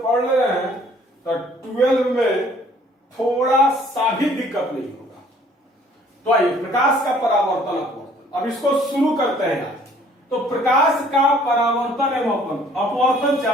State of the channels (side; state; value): both; normal; correlation 0.58